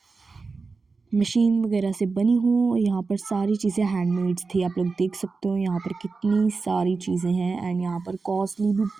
मशीन वगैरह से बनी हो। यहाँ पर सारी चीज़ें हैंडमेड्स थी। आप लोग देख सकते हो यहाँ पर कितनी सारी चीज़ें हैं। एंड यहाँ पर कॉस्टली भी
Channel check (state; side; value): quieter; left; 4.3 dB